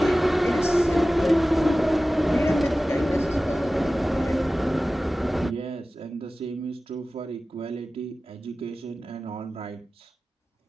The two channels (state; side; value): normal; both; correlation 0.96